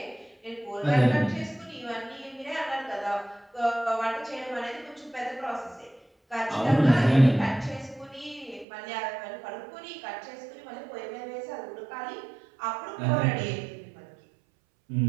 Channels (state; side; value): drops out; left; at 8.7 s